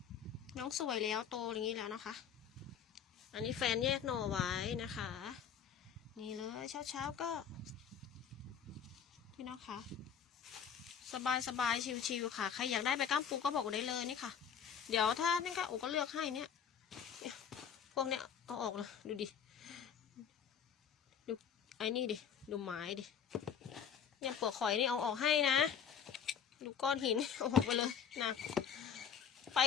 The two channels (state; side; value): quieter; right; 7.9 dB